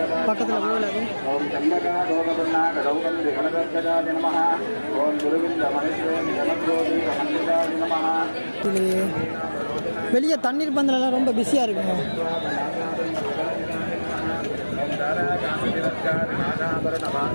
பக்கத்தில் கோவில். இது வெளியே தண்ணீர் பந்தலெல்லாம் ரொம்ப பிஸியாக இருக்குங்க.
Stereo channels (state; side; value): inverted; both; correlation -1.00